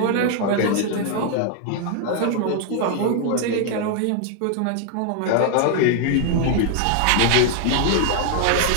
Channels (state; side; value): different; both; correlation 0.00